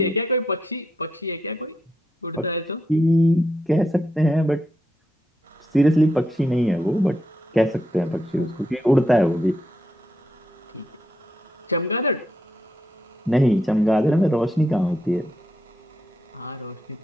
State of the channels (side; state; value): both; normal; correlation 0.80